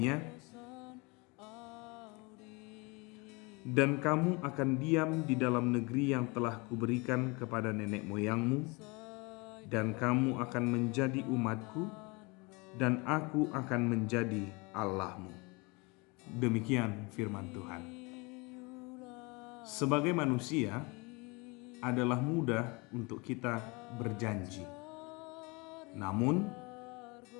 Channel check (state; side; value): quieter; right; 27.8 dB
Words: "Dan kamu akan diam di dalam negeri yang telah kuberikan kepada nenek moyangmu, dan kamu akan menjadi umatku, dan aku akan menjadi Allahmu." Demikian firman Tuhan. Sebagai manusia, adalah mudah untuk kita berjanji. Namun,